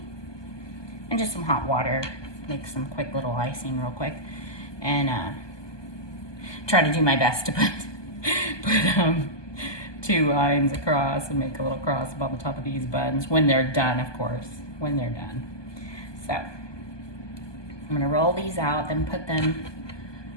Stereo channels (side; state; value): right; late; 1.2 ms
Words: and just some hot water. Make some quick little icing real quick. And try to do my best to put 2 lines across and make a little cross up on the top of these buns when they're done, of course, when they're done. So I'm gonna roll these out, then put them